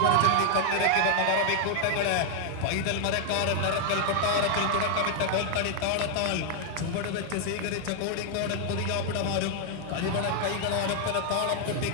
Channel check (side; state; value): both; different; correlation 0.00